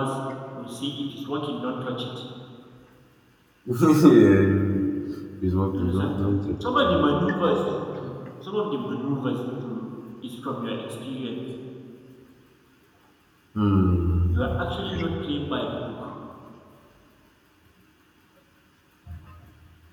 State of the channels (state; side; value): identical; both; correlation 1.00